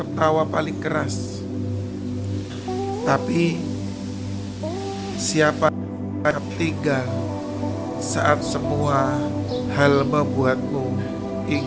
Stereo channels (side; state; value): both; identical; correlation 1.00